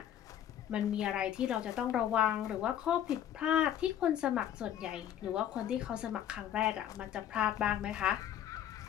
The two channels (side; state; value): right; quieter; 10.5 dB